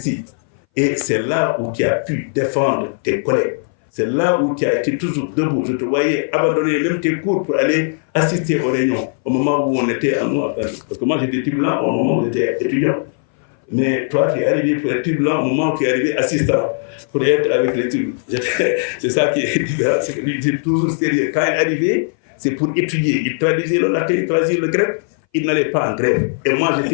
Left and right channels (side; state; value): right; silent; 61 dB below the other